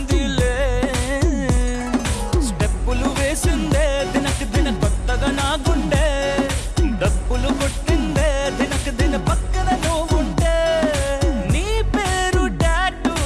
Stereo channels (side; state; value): both; identical; correlation 1.00